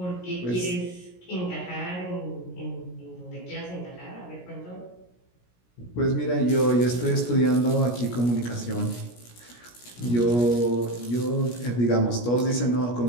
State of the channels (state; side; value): late; right; 17 ms